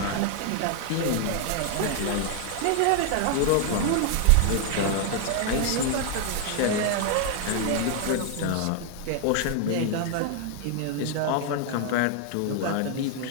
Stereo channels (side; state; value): both; different; correlation 0.00